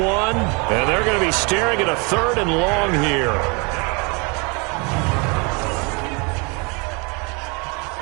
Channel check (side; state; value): left; quieter; 31.4 dB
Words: and they're going to be staring at a 3rd and long here.